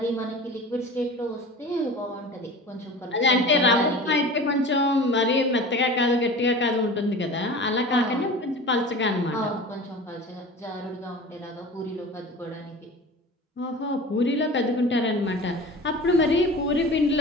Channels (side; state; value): both; normal; correlation 0.37